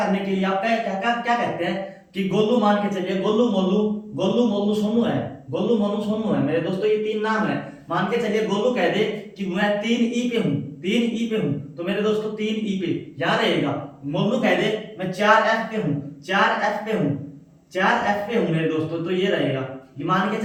के लिए आप क्या कहते हैं कि गोलू, मान के चलिए गोलू मोलू सोनू है, गोलू मोलू सोनू है मेरे दोस्तों, ये 3 नाम है। मान के चलिए गोलू कह दे कि मैं 3E पे हूँ, 3E पे हूँ, तो मेरे दोस्तों 3E पे यहाँ रहेगा। मोलू कह दे मैं 4F पे हूँ, 4F पे हूँ, 4F पे हूँ मेरे दोस्तों, तो ये रहेगा। ये मान के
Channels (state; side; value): identical; both; correlation 1.00